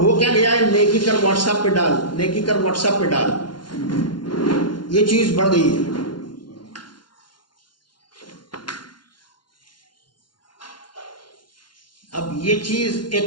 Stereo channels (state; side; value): late; right; 0.71 ms